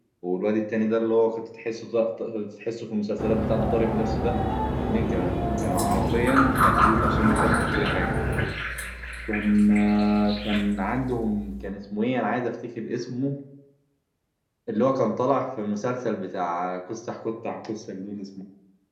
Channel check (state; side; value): identical; both; correlation 1.00